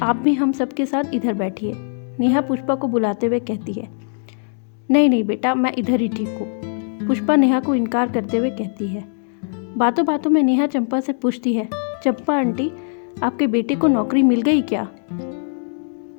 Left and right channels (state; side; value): silent; right; digital silence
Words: आप भी हम सबके साथ इधर बैठिए, नेहा पुष्पा को बुलाते हुए कहती है। नहीं नहीं बेटा, मैं इधर ही ठीक हूँ, पुष्पा नेहा को इनकार करते हुए कहती है। बातों बातों में नेहा चंपा से पूछती है, चंपा आंटी, आपके बेटे को नौकरी मिल गई क्या?